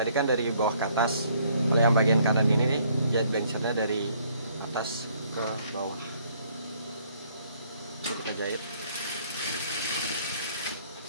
kan dari bawah ke atas. Kalau yang bagian kanan ini nih, jahit blengsernya dari atas ke bawah. Ini kita jahit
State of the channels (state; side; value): inverted; both; correlation -0.64